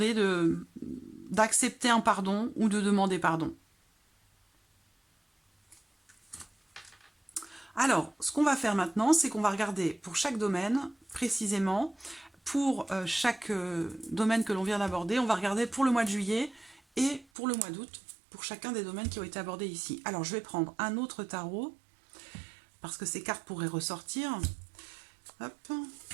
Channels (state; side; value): drops out; left; at 17.2 s